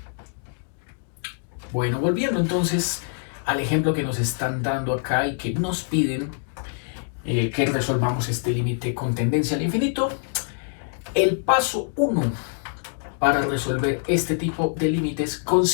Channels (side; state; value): right; silent; 62 dB below the other